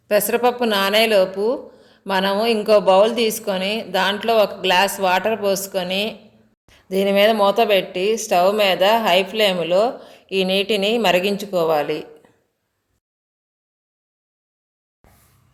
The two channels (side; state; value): both; identical; correlation 1.00